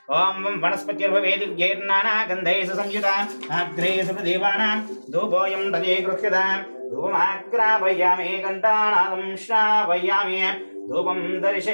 ओम वनस्पतिर्भवे दिव्यैर्नानागन्धैः संयुता अग्रे सुप्रदेवानां धूपोऽयं तदे गृह्यता धूपमाग्रापयामि घण्टानादं श्रावयामि धूपं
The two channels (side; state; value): both; inverted; correlation -1.00